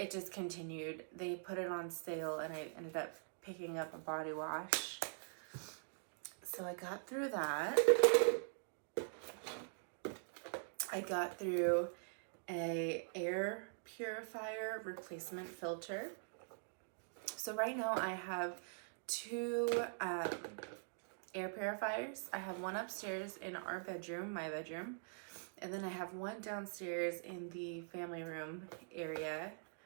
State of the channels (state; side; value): silent; left; digital silence